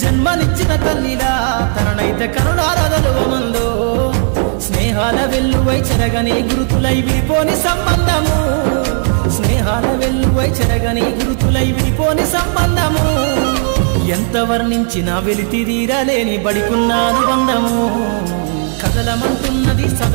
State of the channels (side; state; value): left; silent; 57 dB below the other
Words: జన్మనిచ్చిన తల్లిలా తననైతే కరుణారదలువమందో స్నేహాల వెల్లువై చెరగని గురుతులై విడిపోని సంబంధము స్నేహాల వెల్లువై చెరగని గురుతులై విడిపోని సంబంధము ఎంత వర్ణించినా వెలితిరీరలేని బడికున్న అనుబంధము కదలమంటున్నది